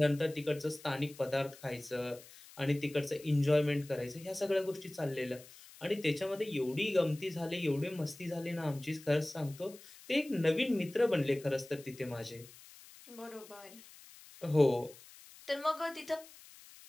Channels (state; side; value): noise; left; hiss, 20 dB below the sound